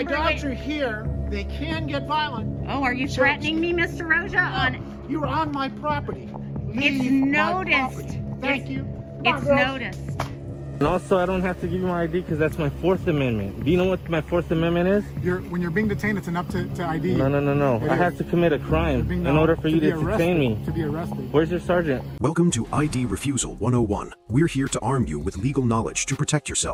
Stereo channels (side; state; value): both; identical; correlation 1.00